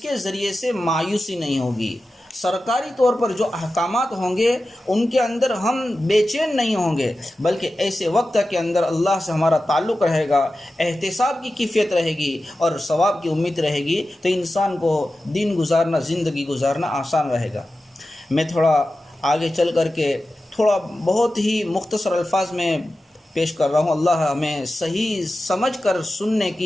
ذریعے سے مایوسی نہیں ہوگی، سرکاری طور پر جو احکامات ہوں گے ان کے اندر ہم بے چین نہیں ہوں گے، بلکہ ایسے وقت کے اندر اللہ سے ہمارا تعلق رہے گا، احتساب کی کیفیت رہے گی اور ثواب کی امید رہے گی، تو انسان کو دن گزارنا، زندگی گزارنا آسان رہے گا۔ میں تھوڑا آگے چل کر کے تھوڑا بہت ہی مختصر الفاظ میں پیش کر رہا ہوں، اللہ ہمیں صحیح سمجھ کر سننے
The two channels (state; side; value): normal; both; correlation 0.94